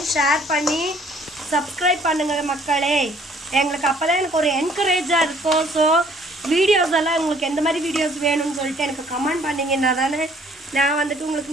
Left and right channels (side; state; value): both; normal; correlation 0.59